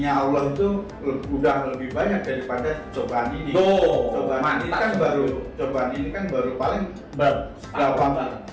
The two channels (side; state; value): both; identical; correlation 1.00